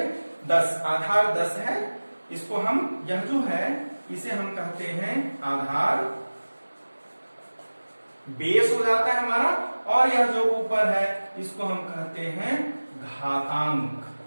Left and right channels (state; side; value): inverted; both; correlation -1.00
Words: 10। आधार 10 है, इसको हम यह जो है इसे हम कहते हैं आधार, बेस हो जाता है हमारा। और यह जो ऊपर है इसको हम कहते हैं घातांक।